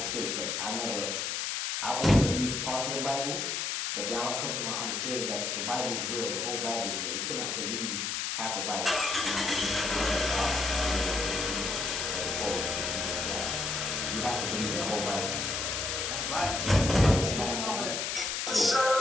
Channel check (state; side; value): noise; left; hiss, 1 dB below the sound